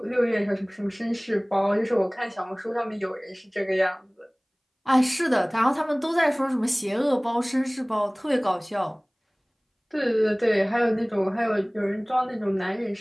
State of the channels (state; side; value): identical; both; correlation 1.00